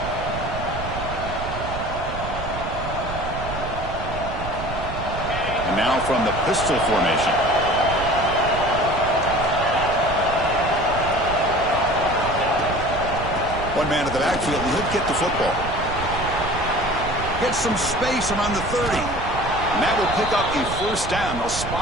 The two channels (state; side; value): noise; right; rumble, 8 dB below the sound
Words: And now from the pistol formation. One man at the backfield, and he'll get the football. Gets some space around the 30. And that will pick up a first down. They'll